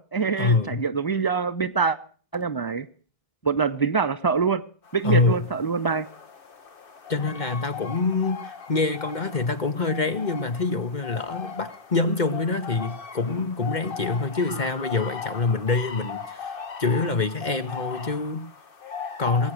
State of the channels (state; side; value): late; right; 2.1 ms